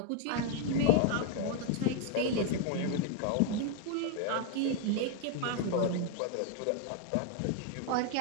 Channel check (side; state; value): both; different; correlation 0.00